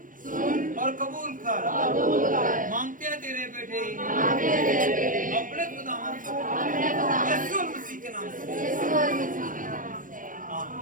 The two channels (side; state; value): left; late; 0.39 ms